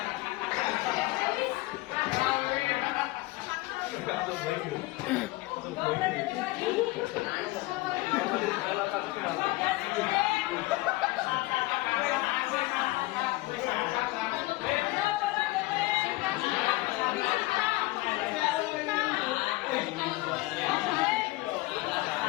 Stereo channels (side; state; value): right; quieter; 20.3 dB